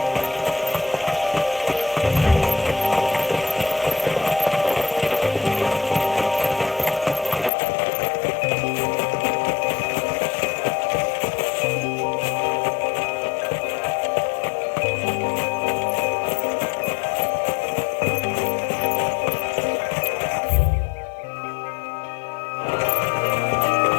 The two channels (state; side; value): drops out; right; at 7.5 s